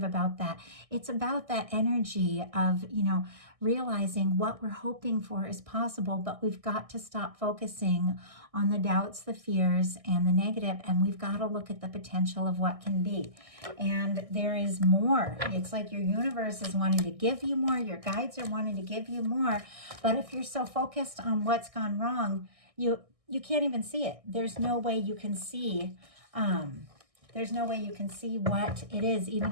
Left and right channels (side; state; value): left; late; 1.6 ms